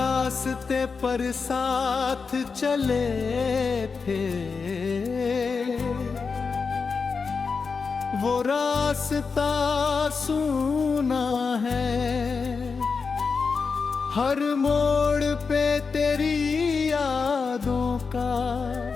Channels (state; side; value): quieter; right; 5.0 dB